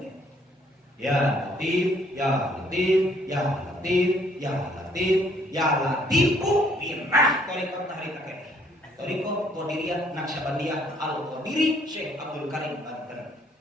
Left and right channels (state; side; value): normal; both; correlation 0.64